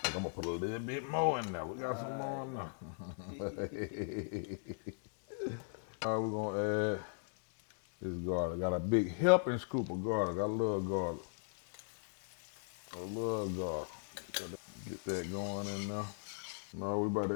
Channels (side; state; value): right; silent; digital silence